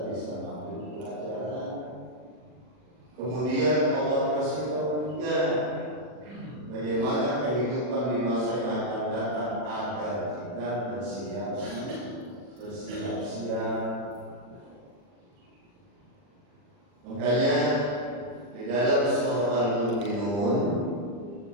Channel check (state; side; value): late; left; 40 ms